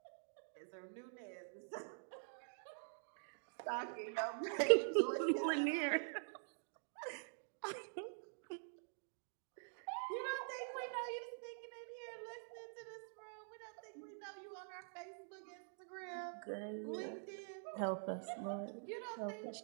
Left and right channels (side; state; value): left; silent; digital silence